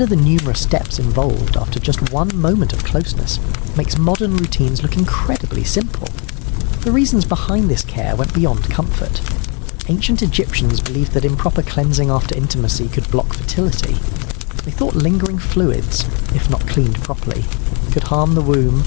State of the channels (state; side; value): quieter; right; 35.5 dB